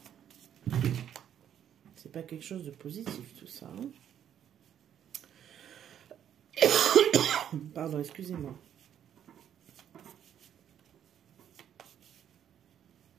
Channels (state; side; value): quieter; left; 9.7 dB